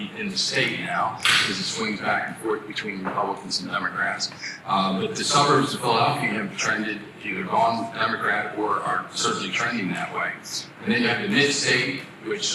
in the state now, because it swings back and forth between Republicans and Democrats. But the suburbs of Philadelphia have trended, either gone Democrat or are certainly trending that way. And then you have the mid-state,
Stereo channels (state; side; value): identical; both; correlation 1.00